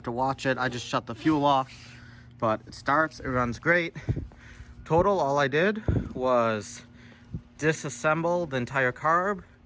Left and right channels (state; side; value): identical; both; correlation 1.00